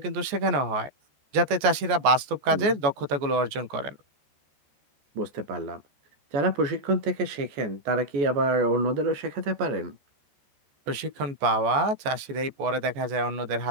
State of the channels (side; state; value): left; late; 14 ms